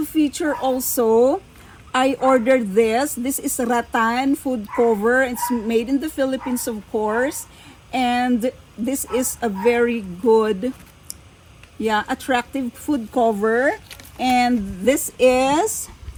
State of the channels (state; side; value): identical; both; correlation 1.00